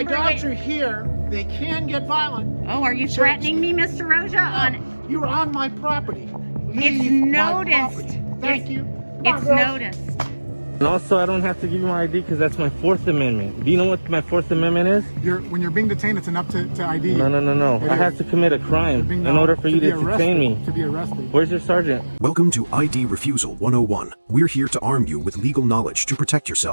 My dogs are here. They can get violent. Oh, are you threatening me, Mr. Roja? No, you're on my property. It's noticed. Thank you. It's noticed. And also, I don't have to give you my ID because that's my Fourth Amendment. Do you know what my Fourth Amendment is? When you're being detained, it's enough to ID you. No. I have to commit a crime in order for you to detain me. To be arrested. Where's your sergeant? Welcome to ID Refusal 101. We're here to arm you with legal knowledge to protect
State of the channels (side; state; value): both; inverted; correlation -1.00